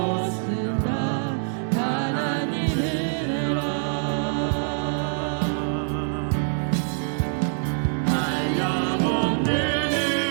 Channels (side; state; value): left; silent; 62 dB below the other